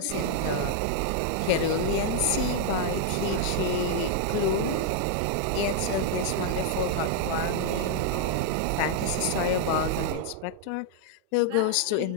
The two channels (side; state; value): both; different; correlation 0.00